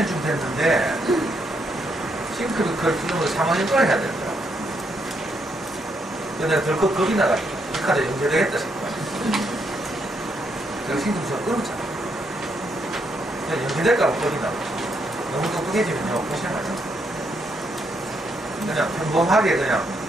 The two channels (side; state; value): both; normal; correlation 0.76